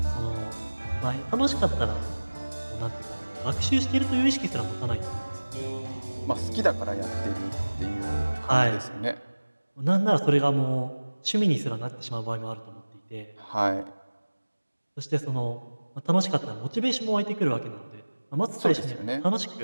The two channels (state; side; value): inverted; both; correlation -1.00